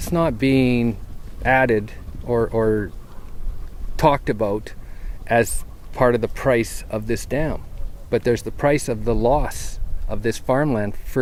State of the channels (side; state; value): both; identical; correlation 1.00